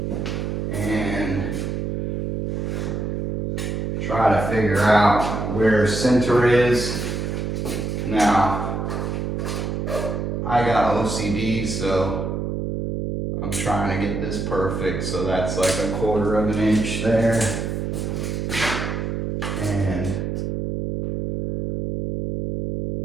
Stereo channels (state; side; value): noise; right; hum, 2 dB below the sound